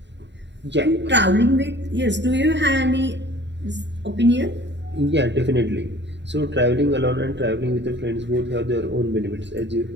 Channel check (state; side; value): late; left; 0.52 ms